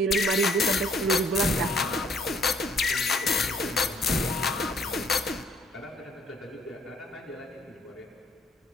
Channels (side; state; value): both; normal; correlation 0.62